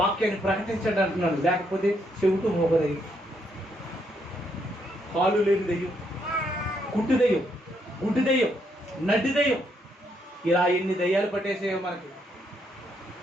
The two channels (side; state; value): both; normal; correlation 0.75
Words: ప్రకటించండి అంటున్నాను. లేకపోతే చెవిటూ మోగదయ్యం, కాలు లేని దెయ్యం, కుట్టు దెయ్యం, గుడ్డి దెయ్యం, నడ్డి దెయ్యం, ఇలా ఎన్ని దెయ్యాలు పట్టేసేయో